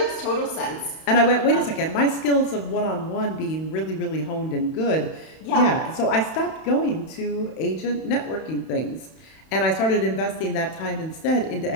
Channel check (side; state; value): right; late; 31 ms